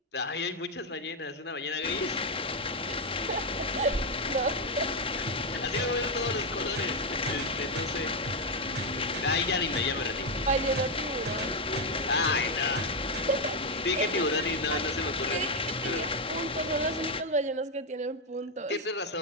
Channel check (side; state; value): both; normal; correlation 0.04